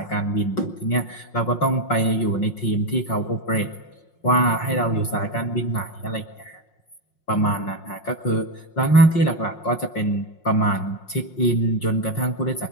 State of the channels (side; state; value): right; late; 5.6 ms